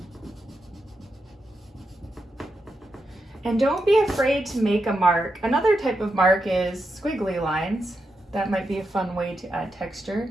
And don't be afraid to make a mark. Another type of mark is squiggly lines. That might be a fun way to add texture.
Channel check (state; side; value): normal; both; correlation 0.85